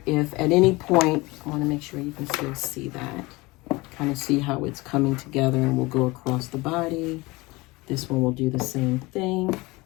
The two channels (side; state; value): right; quieter; 22.8 dB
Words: if at any point, I want to make sure you can still see that, kind of see how it's coming together, and we'll go across the body. This one will do the same thing.